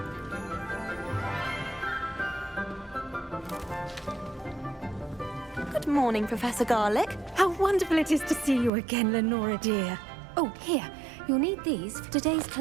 Good morning, Professor Garlick. How wonderful it is to see you again, Lenora dear. Oh, here. You'll need these for today's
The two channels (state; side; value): drops out; left; at 8.7 s